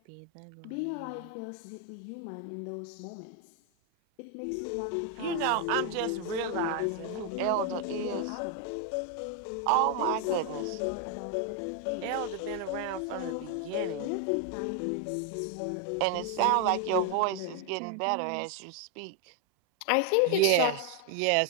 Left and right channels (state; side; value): different; both; correlation 0.01